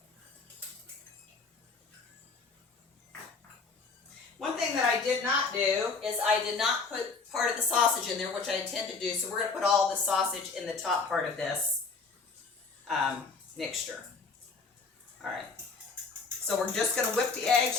One thing that I did not do is I did not put part of the sausage in there, which I intend to do. So we're going to put all the sausage in the top part of this mixture. All right. So we're just going to whip the eggs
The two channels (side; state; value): right; quieter; 4.5 dB